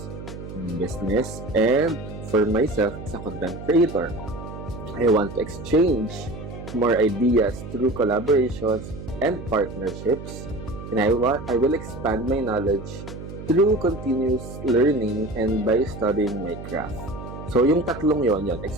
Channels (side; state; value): right; noise; hum, 11 dB below the sound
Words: business and for myself as a content creator. I want to exchange more ideas through collaborations and partnerships, and I will expand my knowledge through continuous learning and by studying my craft. So, yung tatlong yon,